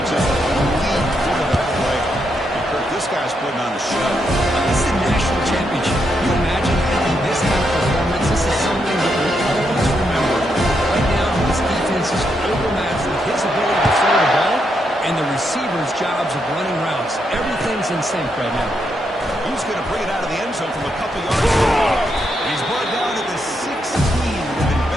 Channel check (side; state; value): both; normal; correlation 0.80